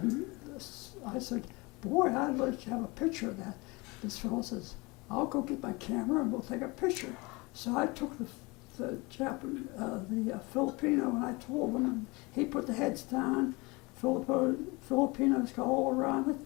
I said, boy, I'd like to have a picture of that. This fellow says, I'll go get my camera and we'll take a picture. So I took the Filipino, and I told him, and he put the heads down. Filipinos got all around it,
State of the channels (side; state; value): right; quieter; 25.4 dB